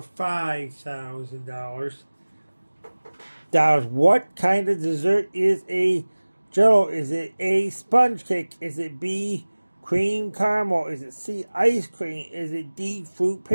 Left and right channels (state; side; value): inverted; both; correlation -1.00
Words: What kind of dessert is a Jello? Is it A, sponge cake? Is it B, cream caramel? Is it C, ice cream? Is it D, fruit